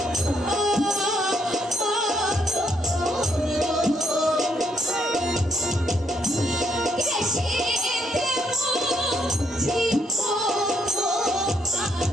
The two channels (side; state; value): both; normal; correlation 0.74